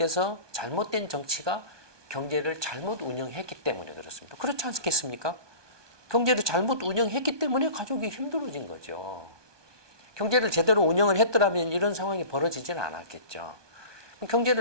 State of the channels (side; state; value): left; late; 1.2 ms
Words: 잘못된 정치가 경제를 잘못 운영했기 때문에 그렇습니다. 그렇지 않겠습니까? 경제를 잘못 운영했기 때문에 가족이 힘들어진 거죠. 경제를 제대로 운영을 했더라면 이런 상황이 벌어지지는 않았겠죠.